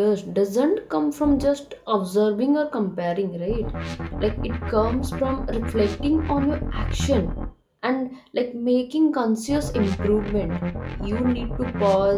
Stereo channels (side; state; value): both; identical; correlation 1.00